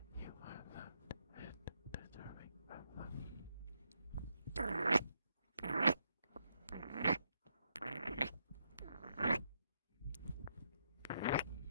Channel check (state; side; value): inverted; both; correlation -0.78